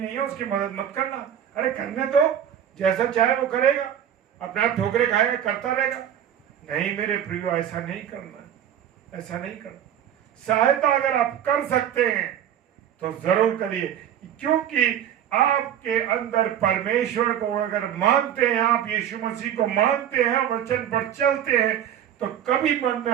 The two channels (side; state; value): left; quieter; 10.0 dB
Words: है, उसकी मदद मत करना, अरे करने दो, जैसा चाहे वो करेगा, अपने आप ठोकरे खाएगा, करता रहेगा। नहीं मेरे प्रियो, ऐसा नहीं करना, ऐसा नहीं करना। सहायता अगर आप कर सकते हैं तो जरूर करिए, क्योंकि आपके अंदर परमेश्वर को अगर मानते हैं, आप यीशु मसीह को मानते हैं, वचन पर चलते हैं, तो कभी मन में